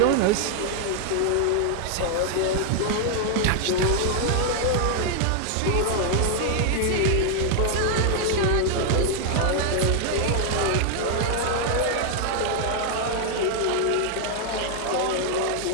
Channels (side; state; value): both; different; correlation 0.00